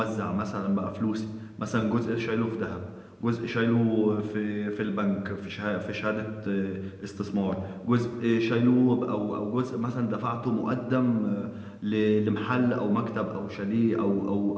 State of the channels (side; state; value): both; identical; correlation 1.00